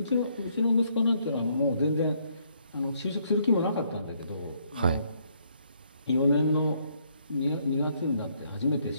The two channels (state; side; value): inverted; both; correlation -0.70